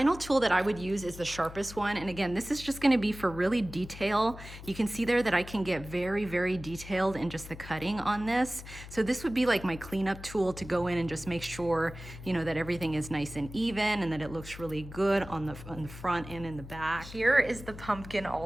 tool that I would use is the sharpest one. And again, this is just going to be for really detail. You can see there that I can get very, very detailed in just the cutting on this. So this would be like my cleanup tool to go in and just make sure, you know, that everything is nice and even and that it looks really good on the front and in the back. Here is the pumpkin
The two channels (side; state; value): left; noise; hum, 14 dB below the sound